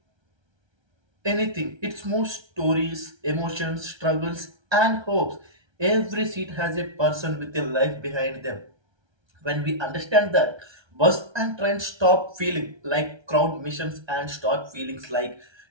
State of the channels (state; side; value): late; left; 1.3 ms